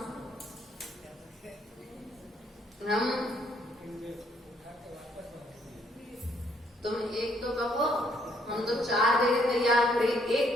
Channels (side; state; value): both; normal; correlation 0.68